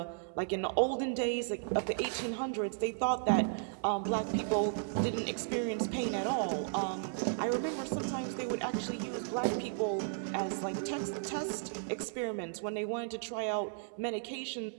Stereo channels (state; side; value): silent; left; 55 dB below the other